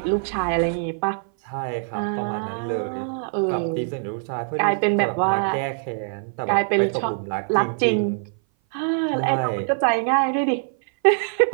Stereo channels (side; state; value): left; silent; 58 dB below the other